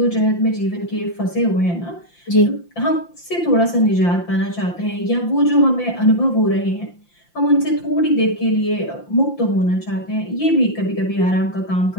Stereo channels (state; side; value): late; right; 5.8 ms